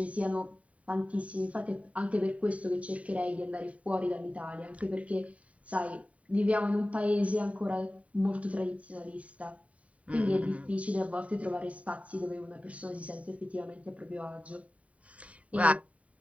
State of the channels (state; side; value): late; left; 0.067 ms